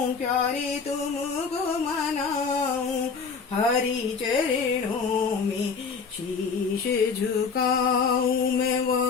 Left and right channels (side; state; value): right; quieter; 5.3 dB